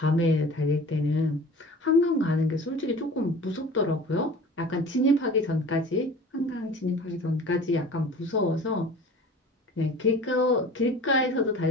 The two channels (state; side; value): normal; both; correlation 0.42